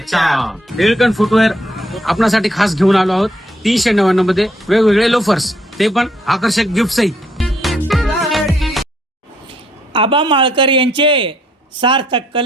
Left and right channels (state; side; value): normal; both; correlation 0.70